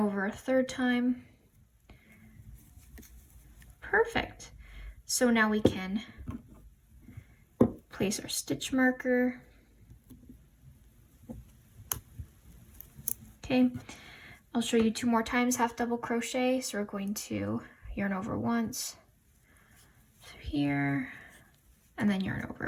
a third time. Perfect. So now we can place our stitch marker. Okay, I'll show you 2 more times half double crochet. So we're going to yarn over once, through here, and then yarn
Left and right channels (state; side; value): identical; both; correlation 1.00